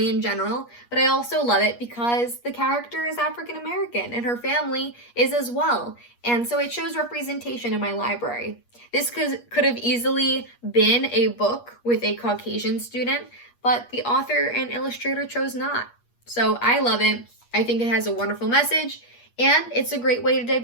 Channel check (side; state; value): right; late; 8.4 ms